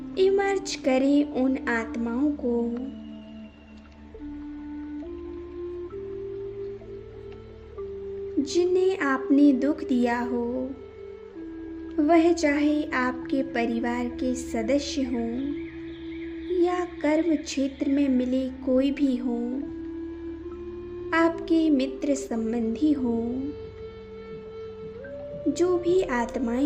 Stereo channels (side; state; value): both; identical; correlation 1.00